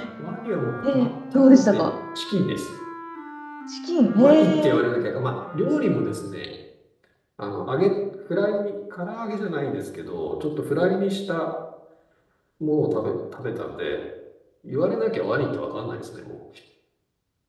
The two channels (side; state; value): both; identical; correlation 1.00